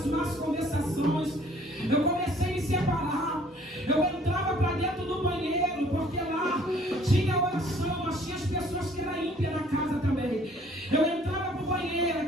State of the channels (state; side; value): normal; both; correlation 0.57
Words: más conversações. Eu comecei a me separar. Eu entrava para dentro do banheiro, porque lá tinha oração, mas tinha as pessoas que eram ímpias na casa também. Eu entrava para o banheiro,